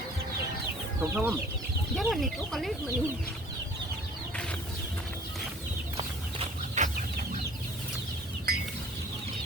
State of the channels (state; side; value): normal; both; correlation 0.51